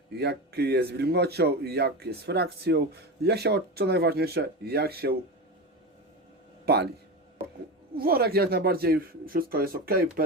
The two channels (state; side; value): normal; both; correlation 0.22